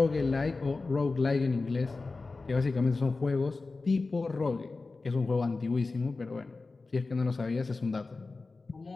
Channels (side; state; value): right; quieter; 3.8 dB